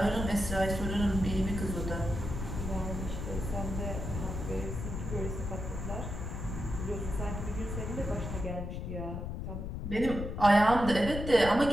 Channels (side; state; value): left; noise; rumble, 5 dB below the sound